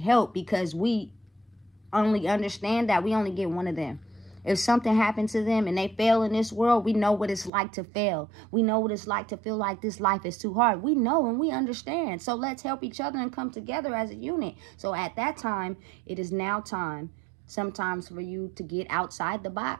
because we only understand that we only get one of them. If something happened to them and they fail in this world, we know what it's like to fail. We know what it's like to feel like this life is too hard. We know and we understand. So let's help each other and come together as a unit. So at that time, it is now time sometimes for you to get outside the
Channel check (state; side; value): drops out; left; at 7.5 s